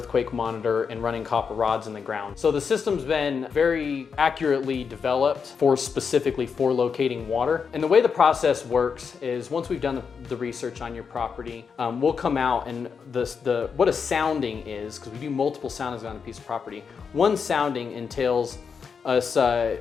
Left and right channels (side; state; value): right; quieter; 6.0 dB